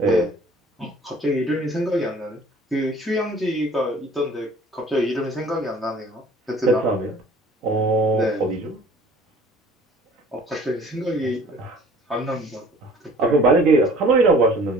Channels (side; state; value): both; normal; correlation 0.51